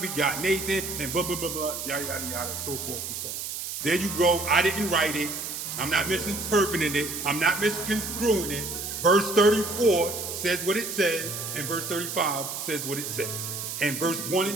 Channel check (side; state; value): right; noise; hiss, 6 dB below the sound